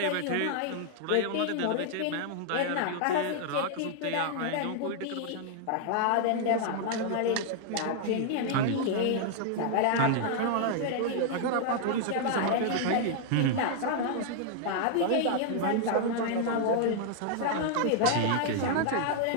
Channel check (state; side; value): different; both; correlation 0.00